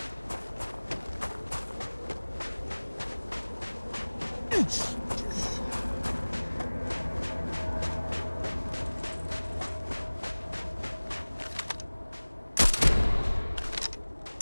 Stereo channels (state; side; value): inverted; both; correlation -1.00